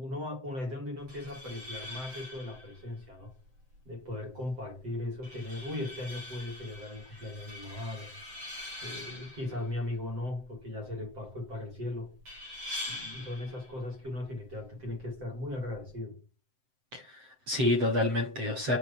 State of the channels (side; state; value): left; late; 7.7 ms